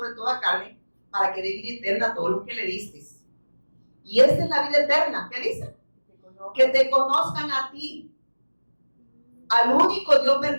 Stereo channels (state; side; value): inverted; both; correlation -1.00